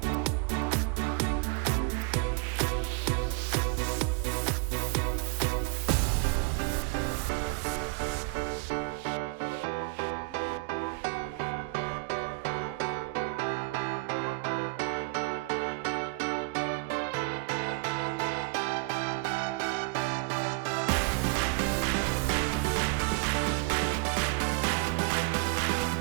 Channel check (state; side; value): quieter; left; 26.5 dB